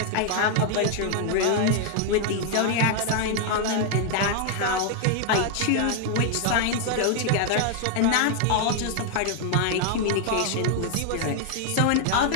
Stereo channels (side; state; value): both; different; correlation 0.00